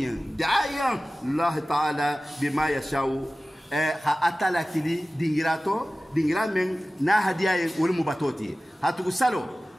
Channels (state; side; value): normal; both; correlation 0.97